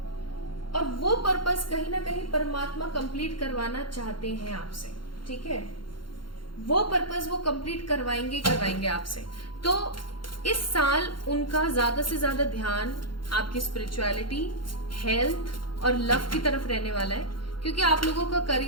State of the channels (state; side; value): late; right; 0.72 ms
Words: और वो पर्पस कहीं ना कहीं परमात्मा कंप्लीट करवाना चाहते हैं आपसे। ठीक है, वो पर्पस वो कंप्लीट करवाएंगे आपसे। तो इस साल उनका ज्यादा से ज्यादा ध्यान आपकी स्पिरिचुअलिटी, हेल्थ और लव की तरफ रहने वाला है, क्योंकि आप लोगों का